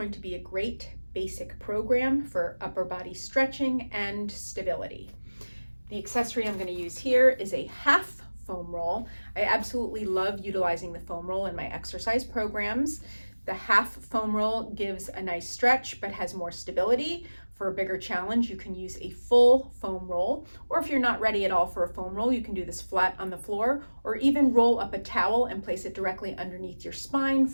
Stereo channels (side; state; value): both; inverted; correlation -1.00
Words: to be a great basic program for upper body stretching and stability. The accessory I'm going to use here is a half foam roll. I absolutely love utilizing the foam roll in my exercise programs. The half foam roll gives a nice stretch but has more stability. For a bigger challenge, you can use a full foam roll, or if you're not ready at all for a foam roll, you can do this flat on the floor, or even roll up a towel and place it directly underneath your spine